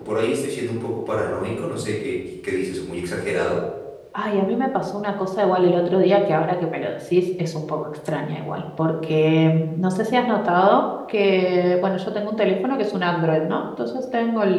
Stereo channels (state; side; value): identical; both; correlation 1.00